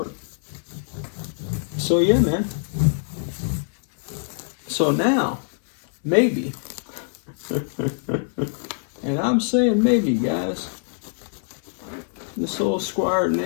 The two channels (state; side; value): silent; right; 63 dB below the other